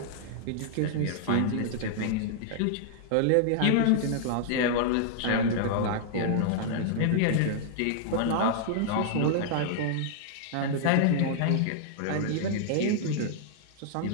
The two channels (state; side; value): different; both; correlation -0.01